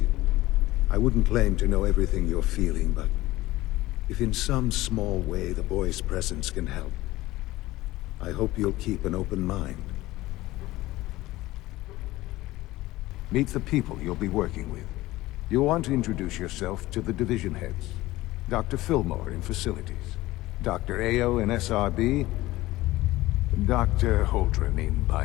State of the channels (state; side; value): quieter; right; 17.8 dB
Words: I wouldn't claim to know everything you're feeling, but if in some small way the boy's presence can help, I hope you'll keep an open mind. Meet the people you'll be working with. You'll want to introduce yourself to the division heads. Dr. Fillmore in Facilities, Dr. Ayo in SRB, Dr. Holdren in